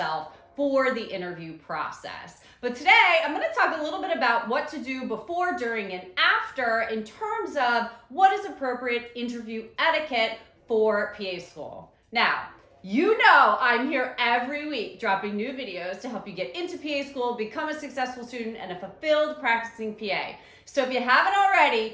for the interview process. But today, I'm going to talk a little bit about what to do before, during, and after in terms of what is appropriate interview etiquette for PA school. Now, you know I'm here every week dropping new videos to help you get into PA school, become a successful student, and a fulfilled practicing PA. So if you haven't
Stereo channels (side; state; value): both; identical; correlation 1.00